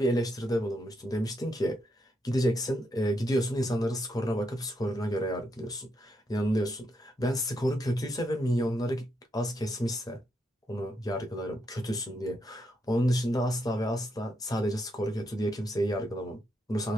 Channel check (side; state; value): both; normal; correlation 0.80